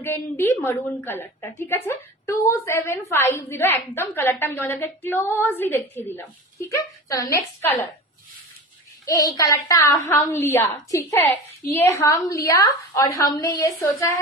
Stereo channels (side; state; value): both; normal; correlation 0.32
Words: মারুন কালারটা, ঠিক আছে? 2750 একদম। কালারটা আমি তোমাদেরকে ক্লোজলি দেখিয়ে দিলাম, ঠিক আছে? চলো নেক্সট কালার। ये कलरटा हम लिया, ठीक है? ये हम लिया और हमने ये सोचा